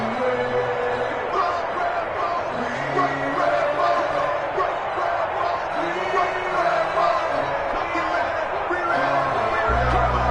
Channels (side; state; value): both; identical; correlation 1.00